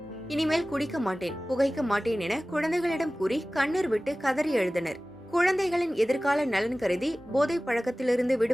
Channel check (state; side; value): normal; both; correlation 0.97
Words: இனிமேல் குடிக்க மாட்டேன், புகைக்க மாட்டேன் என குழந்தைகளிடம் கூறி கண்ணீர் விட்டு கதறி எழுதினர். குழந்தைகளின் எதிர்கால நலன் கருதி போதை பழக்கத்திலிருந்து